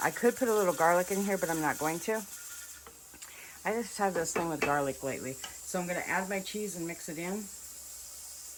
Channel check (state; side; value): identical; both; correlation 1.00